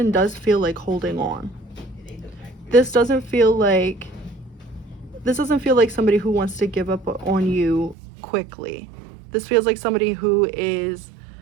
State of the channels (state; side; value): drops out; left; at 8.0 s